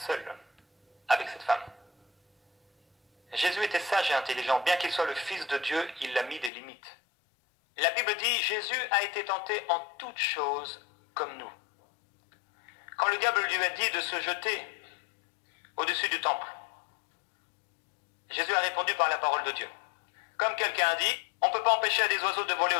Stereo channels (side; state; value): right; drops out; at 6.5 s